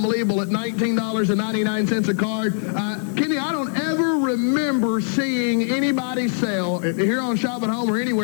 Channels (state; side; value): silent; right; digital silence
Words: at $19.99 a card. Kenny, I don't ever remember seeing anybody sell, here on Shop at Home or